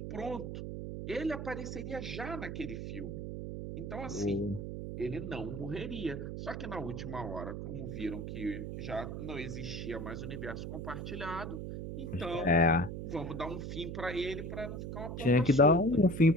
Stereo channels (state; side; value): noise; right; hum, 6 dB below the sound